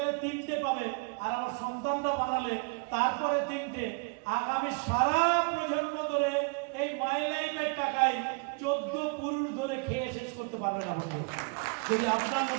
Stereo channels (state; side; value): quieter; left; 34.2 dB